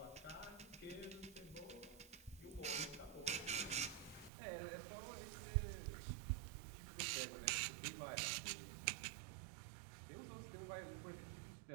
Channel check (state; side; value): drops out; left; at 4.3 s